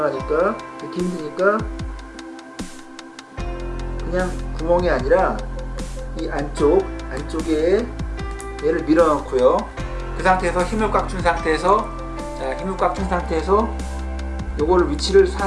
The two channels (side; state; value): both; identical; correlation 1.00